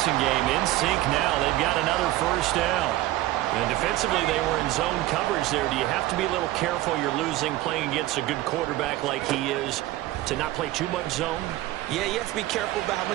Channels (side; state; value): left; quieter; 16.3 dB